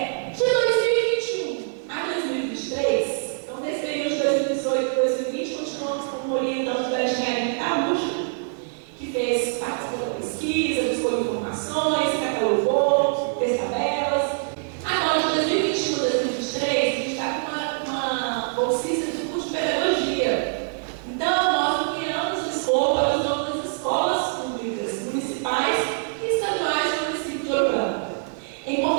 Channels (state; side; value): silent; left; digital silence